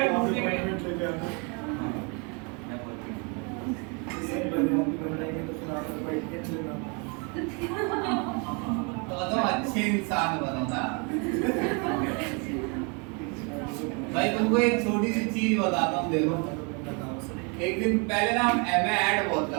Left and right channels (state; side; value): quieter; left; 33.5 dB